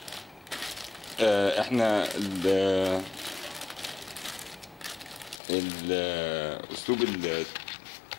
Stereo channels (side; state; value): right; drops out; at 5.4 s